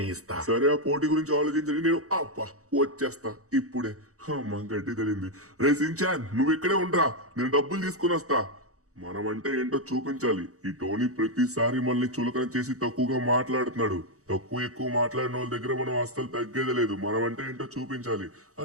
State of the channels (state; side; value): late; left; 0.65 ms